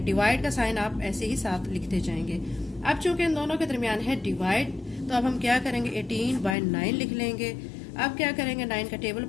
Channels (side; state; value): right; drops out; at 6.6 s